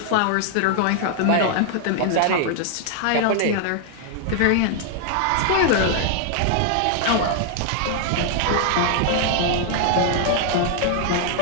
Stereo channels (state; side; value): different; both; correlation 0.00